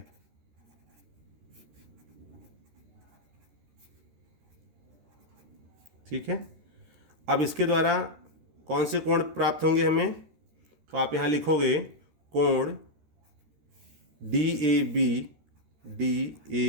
ठीक है, अब इसके द्वारा कौन से कोण प्राप्त होंगे हमें, तो आप यहाँ लिखोगे कोण DAB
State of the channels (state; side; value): late; left; 13 ms